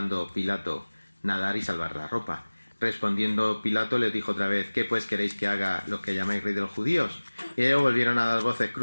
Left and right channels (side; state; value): both; inverted; correlation -1.00